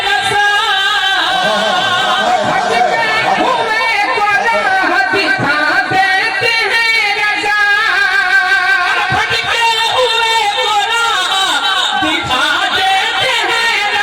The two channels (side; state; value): right; noise; hum, 30 dB below the sound